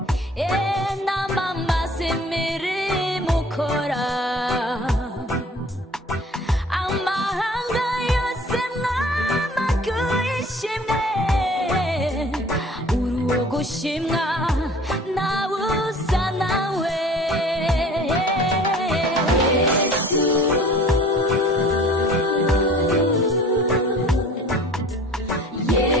namamaze imirimo ukora. Amahanga yose mwamaguye ishimwe, urogushimwa ntawusa nawe.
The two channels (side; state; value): both; normal; correlation 0.48